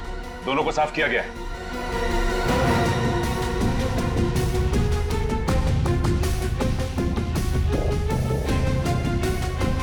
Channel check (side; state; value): both; identical; correlation 1.00